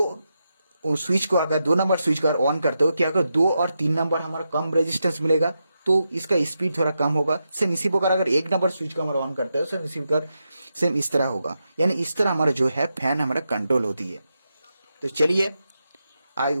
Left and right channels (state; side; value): inverted; both; correlation -0.87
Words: स्विच को अगर 2 नंबर स्विच को अगर ऑन करते हो, क्या अगर 2 और 3 नंबर हमारा कम रेजिस्टेंस मिलेगा तो इसका स्पीड थोड़ा कम होगा। सेम इसी प्रकार अगर 1 नंबर स्विच को हमारा ऑन करते हो सेम इसी प्रकार सेम इस तरह होगा, यानी इस तरह हमारा जो है फैन हमारा कंट्रोल होती है। तो चलिए